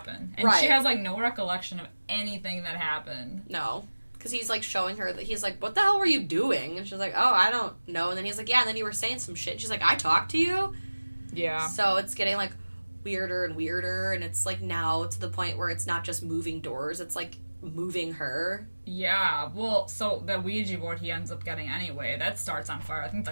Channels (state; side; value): inverted; both; correlation -1.00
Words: And Right. she has, like, no recollection of anything that happened. No. Because he's, like, showing her that he's like, what the hell were you doing? And she's like, oh, I don't know. And then he's like, yeah, and then you were saying some shit. And she's like, I talked to you? Yeah. So it's getting, like, weirder and weirder. And it's, like, now to the point where it's not just moving doors. It's, like, moving her. Yeah. Well, so the Ouija board he ends up getting anyway, that starts on fire, I think,